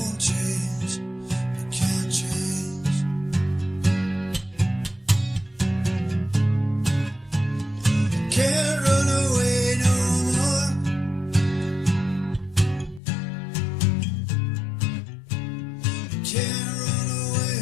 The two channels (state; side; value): drops out; right; at 13.0 s